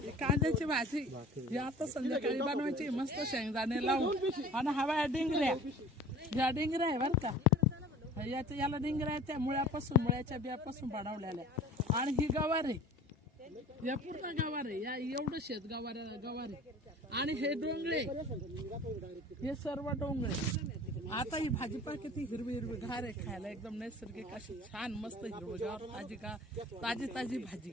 कांद्याची भाजी ही आता संध्याकाळी बनवायची मस्त शेंगदाणे लावून आणि हवा डिंगऱ्या ह्या डिंगऱ्या आहे बरं का याला डिंगऱ्या आहे त्या मुळ्याच्या बियापासून बनवलेल्या आणि ही गवार आहे या पूर्ण गवार आहे या एवढं शेत गवार आहे आणि हे डोंगळे हे सर्व डोंगळे आता ही भाजीपाला किती हिरवी हिरवी घार आहे खायला एकदम नैसर्गिक अशी छान मस्त हिरवगार ताजी भाजी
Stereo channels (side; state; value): both; normal; correlation 0.43